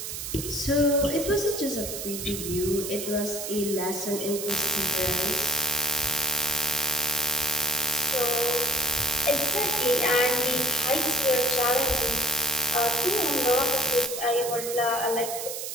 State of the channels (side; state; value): right; noise; hiss, 6 dB below the sound